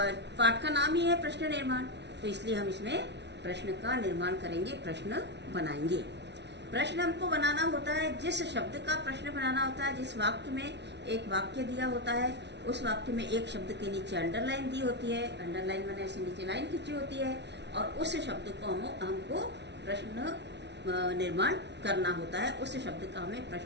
का नाम ही है प्रश्न निर्माण, तो इसलिए हम इसमें प्रश्न का निर्माण करेंगे, प्रश्न बनाएंगे। प्रश्न हमको बनाना होता है, जिस शब्द का प्रश्न बनाना होता है, जिस वाक्य में एक वाक्य दिया होता है, उस वाक्य में एक शब्द के नीचे अंडरलाइन दी होती है, अंडरलाइन मैंने ऐसे नीचे लाइन खींची होती है, और उस शब्द को हमको प्रश्न निर्माण करना होता है। उस शब्द का हमें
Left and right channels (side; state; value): left; late; 0.50 ms